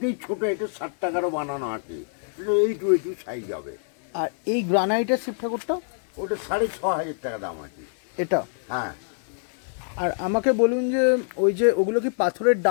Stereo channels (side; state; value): right; silent; digital silence